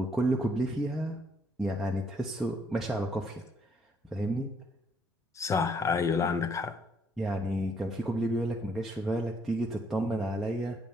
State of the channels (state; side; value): normal; both; correlation 0.69